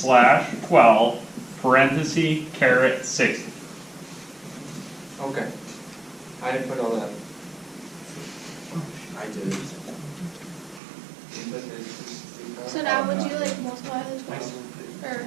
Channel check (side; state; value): left; drops out; at 10.8 s